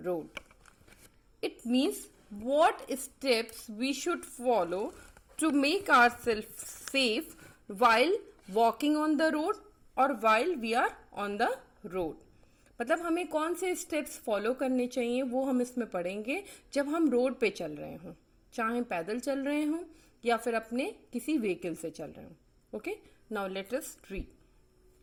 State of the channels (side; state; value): both; identical; correlation 1.00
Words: road. It means what steps we should follow to make ourselves safe while walking on the road or while we are on the road. मतलब हमें कौन से स्टेप्स फॉलो करने चाहिए वो हम इसमें पढ़ेंगे जब हम रोड पे चल रहे हों, चाहे पैदल चल रहे हों या फिर अपने किसी व्हीकल से चल रहे हों. Okay, now let us read.